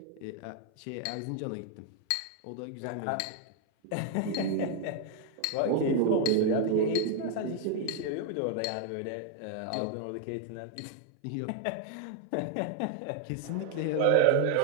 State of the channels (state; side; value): different; both; correlation 0.00